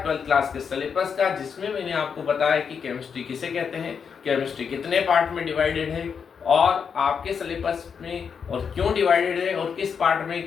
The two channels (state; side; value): quieter; right; 6.5 dB